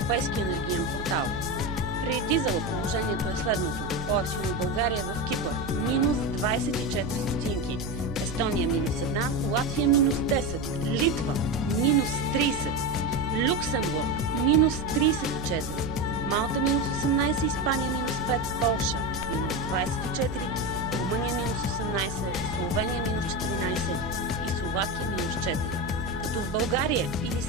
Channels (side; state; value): right; noise; hum, 10 dB below the sound